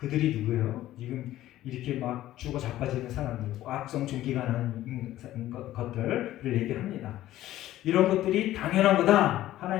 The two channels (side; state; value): right; quieter; 14.2 dB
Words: 누구예요? 지금 이렇게 막 죽어 자빠지는 사람들, 악성 종기가 나는 것들을 얘기합니다. 이런 것들이 당연한 거다.